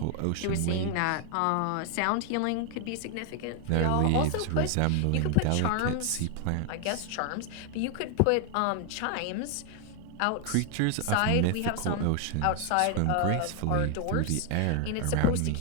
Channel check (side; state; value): both; different; correlation 0.00